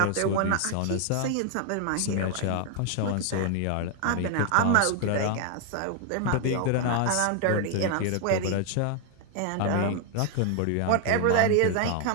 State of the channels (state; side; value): different; both; correlation 0.00